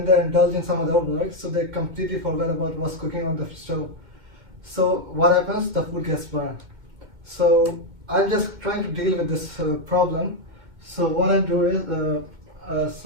they indulge in some other work, so they completely forget about what's cooking on the stove. So what happens? The food gets burned. So I'm just trying to deal with this problem. So what I do is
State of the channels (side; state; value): left; late; 2.1 ms